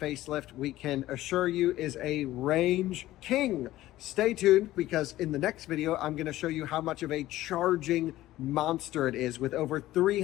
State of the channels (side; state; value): right; quieter; 15.5 dB